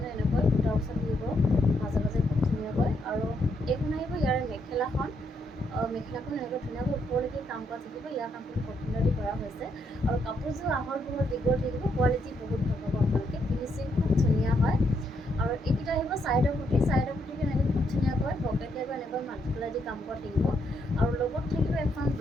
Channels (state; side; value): normal; both; correlation 0.76